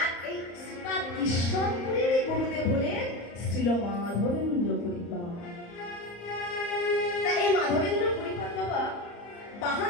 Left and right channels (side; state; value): right; late; 34 ms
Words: এই শ্রীপাদ ঈশ্বরপুরীর গুরুদেব হলেন শ্রীল মাধবেন্দ্র পরিপাদ। তাই এই মাধবেন্দ্র পরিপাদ বাবা